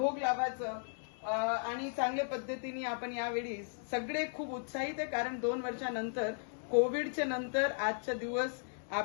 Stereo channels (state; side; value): silent; right; digital silence